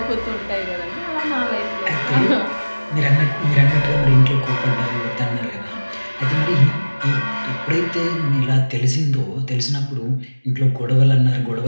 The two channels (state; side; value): inverted; both; correlation -1.00